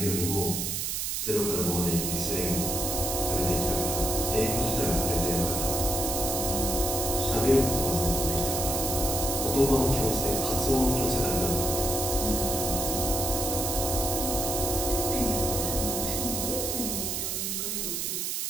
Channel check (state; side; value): noise; right; hiss, 1 dB below the sound